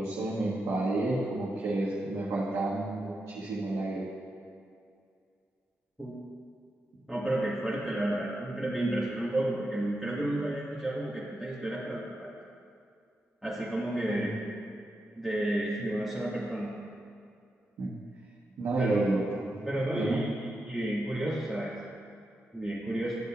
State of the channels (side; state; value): both; normal; correlation 0.87